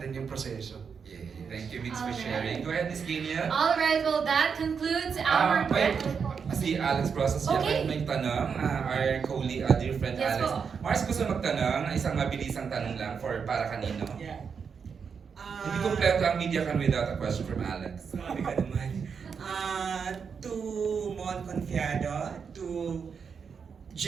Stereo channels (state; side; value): quieter; left; 6.2 dB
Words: yung proseso. Yeah. Thank you, Mix, for sharing. Go ahead, Miss Kenia. Alright, well that concludes our... Wait. Si Alex Process Okay. may tanong. Our colleague, dear friend Yes Alex. po. Mars, gusto magtanong. Isang mabilisang tanong lang para kanino. Yeah. Hindi kompleto ang media can without a question from Alex. Sabi ka naman. To Mon Confiado, to